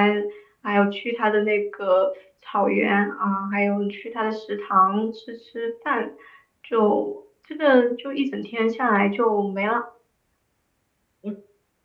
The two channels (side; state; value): both; identical; correlation 1.00